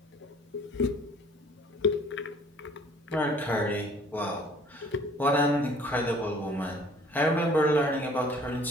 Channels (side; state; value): both; normal; correlation 0.54